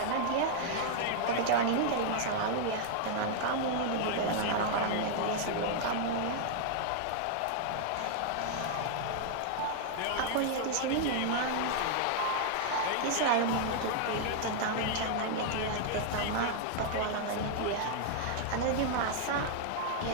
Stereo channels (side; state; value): both; different; correlation -0.01